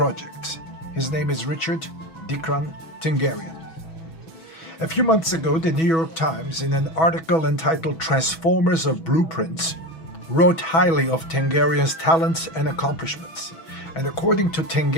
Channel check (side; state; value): right; late; 6.1 ms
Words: His name is Richard Dikran Tenguerian. A few months ago, the New York Times, in an article entitled Transformers of Blueprints, wrote highly of Tenguerian's talents and accomplishments. And according to